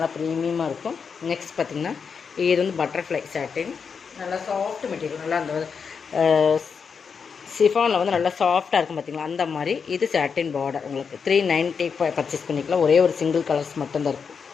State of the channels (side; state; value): right; quieter; 6.0 dB